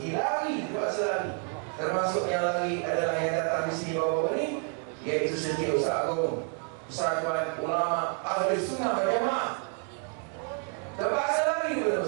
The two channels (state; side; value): quieter; left; 38.6 dB